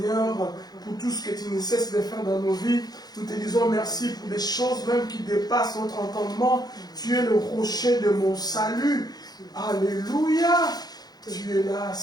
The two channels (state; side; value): late; right; 0.19 ms